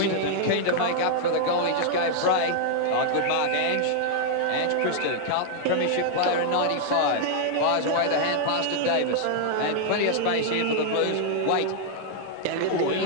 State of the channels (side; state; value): both; different; correlation 0.00